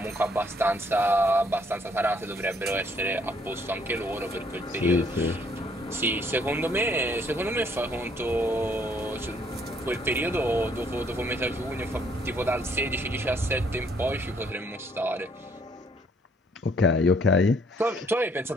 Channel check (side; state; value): both; normal; correlation 0.65